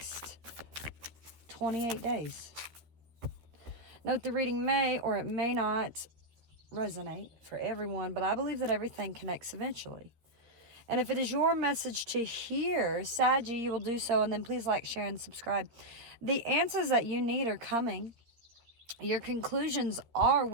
28 days. Note the reading may or it may not resonate for everyone, but I believe that everything connects eventually. And if it is your message to hear, Saggy, you will do so, and then please like, share, and subscribe. The answers that you need are coming. Your conclusions are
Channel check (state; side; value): late; left; 13 ms